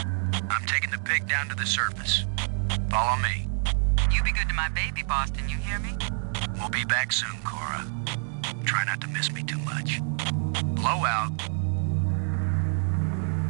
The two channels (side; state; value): left; silent; 60 dB below the other